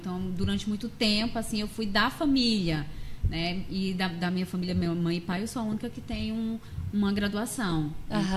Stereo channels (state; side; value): identical; both; correlation 1.00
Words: durante muito tempo, assim, eu fui da família, né? E da minha família, minha mãe e pai, eu sou a única que tem uma graduação.